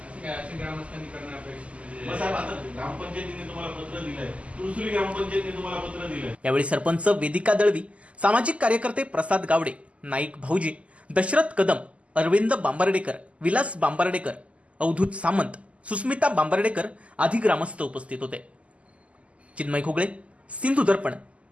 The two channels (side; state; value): left; late; 0.063 ms